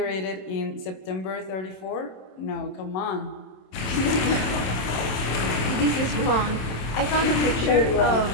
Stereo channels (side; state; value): right; late; 27 ms